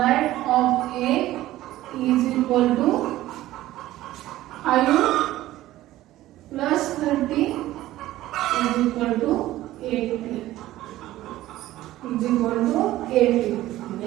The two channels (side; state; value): left; quieter; 15.4 dB